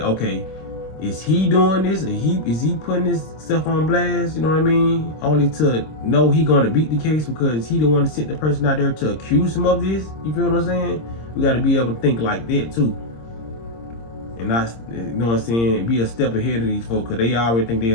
okay, is he doing this? Is he putting this stuff on blast, you know what I mean? Only to know he gonna beat the case because he the one to send the person out there to accuse him of this, you feel what I'm saying? We gotta be able to think like that too. And not, you know what I'm saying, be a step ahead of these folks, because they already think they're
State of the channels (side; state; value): right; late; 26 ms